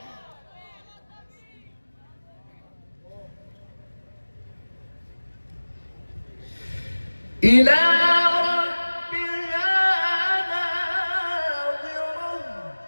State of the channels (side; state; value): both; inverted; correlation -1.00